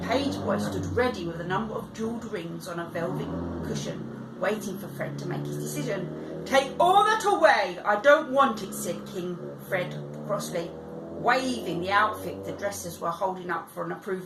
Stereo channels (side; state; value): both; identical; correlation 1.00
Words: page boy stood ready with a number of jewelled rings on a velvet cushion, waiting for Fred to make his decision. "Take all that away, I don't want it," said King Fred crossly, waving the outfit the dressers were holding up for an